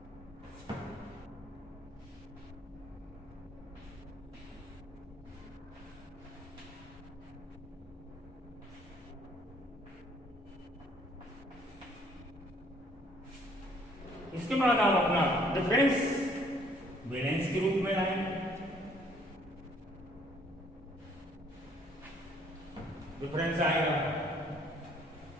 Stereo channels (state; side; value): normal; both; correlation 0.62